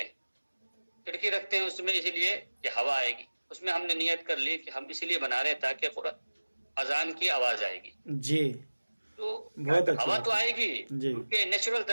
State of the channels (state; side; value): inverted; both; correlation -1.00